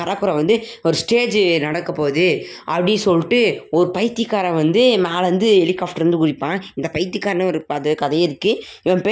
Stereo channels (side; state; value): both; identical; correlation 1.00